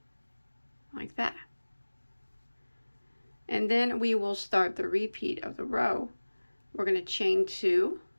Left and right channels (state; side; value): inverted; both; correlation -1.00